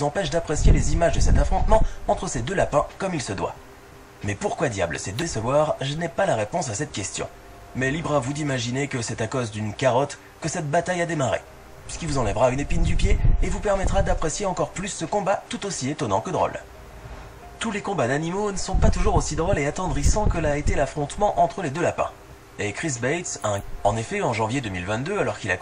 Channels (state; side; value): identical; both; correlation 1.00